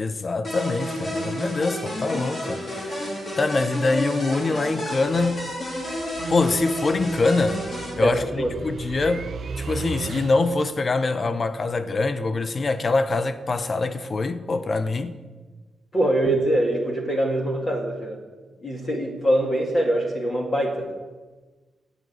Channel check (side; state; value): both; normal; correlation 0.89